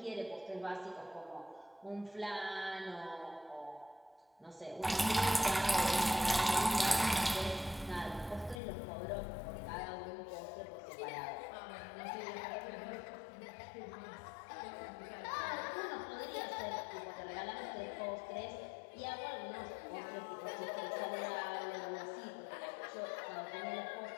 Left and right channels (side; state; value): right; drops out; at 8.6 s